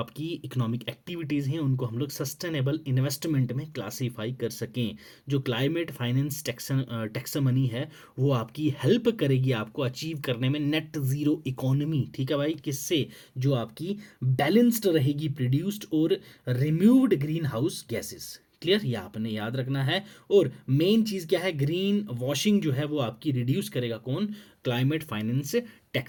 इकोनॉमिक एक्टिविटीज़ हैं उनको हम लोग सस्टेनेबल इन्वेस्टमेंट में क्लासीफाई कर सकें। जो क्लाइमेट फाइनेंस टैक्सोनॉमी है वो आपकी हेल्प करेगी आपको अचीव करने में नेट ज़ीरो इकोनॉमी। ठीक है भाई, किससे? जो आपकी बैलेंस्ड रहेगी प्रोड्यूस्ड और removed green house gases. Clear, ये आपने याद रखना है। और मेन चीज़ क्या है? ग्रीन वॉशिंग जो है वो आपकी रिड्यूस करेगा कौन? Climate finance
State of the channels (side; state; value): both; identical; correlation 1.00